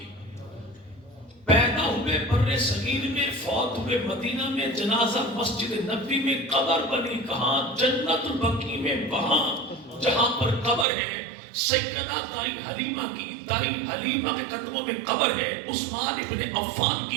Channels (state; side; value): drops out; left; at 10.9 s